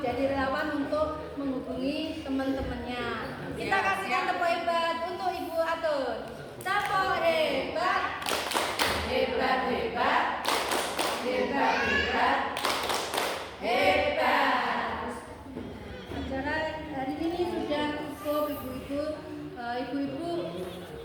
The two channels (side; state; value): both; identical; correlation 1.00